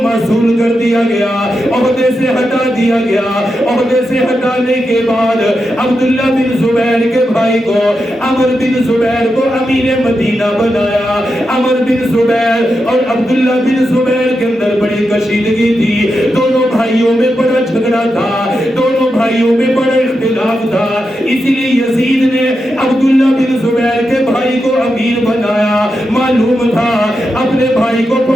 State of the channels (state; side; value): normal; both; correlation 0.87